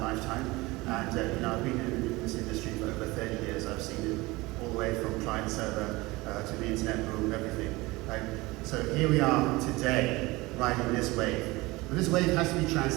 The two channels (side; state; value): left; quieter; 21.7 dB